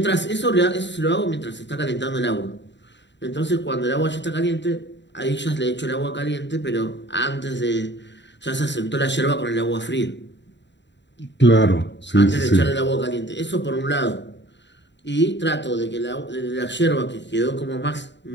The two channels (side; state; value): right; late; 0.52 ms